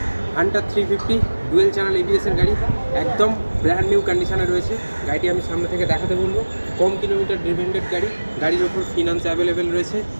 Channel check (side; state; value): both; inverted; correlation -1.00